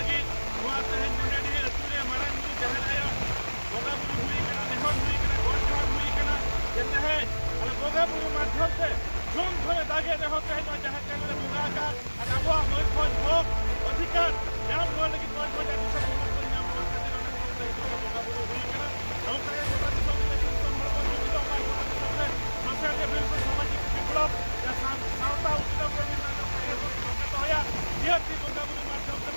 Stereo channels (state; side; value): inverted; both; correlation -1.00